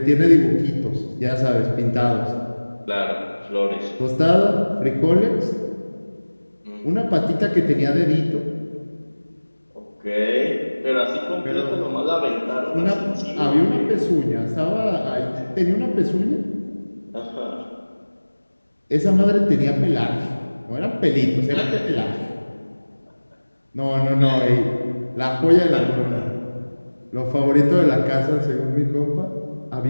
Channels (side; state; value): both; inverted; correlation -1.00